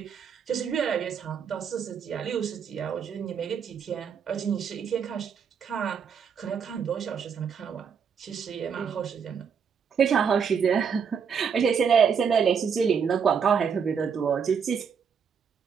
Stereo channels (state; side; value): quieter; left; 6.8 dB